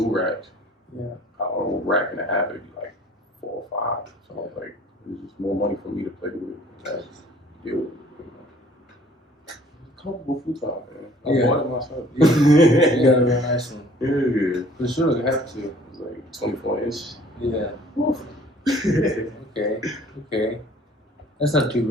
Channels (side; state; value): both; normal; correlation 0.54